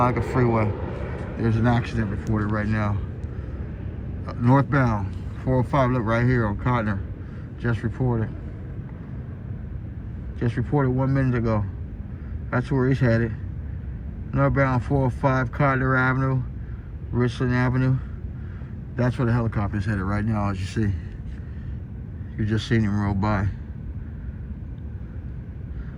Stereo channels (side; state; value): both; identical; correlation 1.00